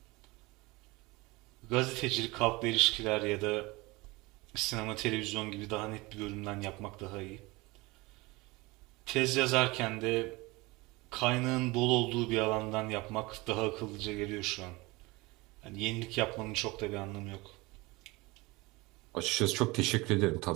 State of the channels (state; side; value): quieter; left; 22.9 dB